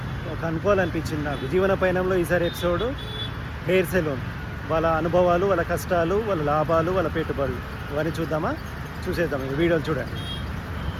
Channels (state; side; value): identical; both; correlation 1.00